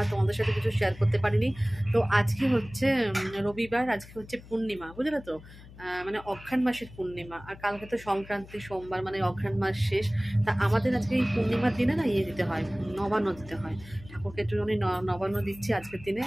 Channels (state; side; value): noise; left; hum, 19 dB below the sound